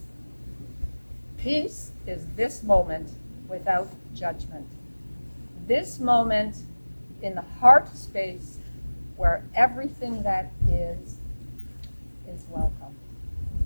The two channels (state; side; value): inverted; both; correlation -1.00